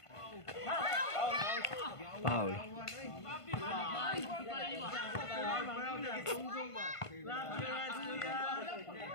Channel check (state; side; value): late; right; 1.5 ms